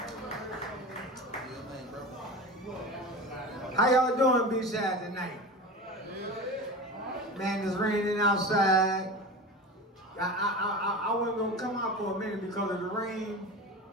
How y'all doing B-side tonight? Man, it's raining outside. I wasn't gonna come out for a minute because of the rain.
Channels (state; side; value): normal; both; correlation 0.30